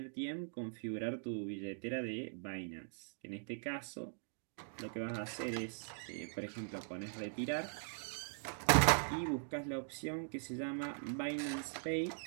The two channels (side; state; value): left; silent; digital silence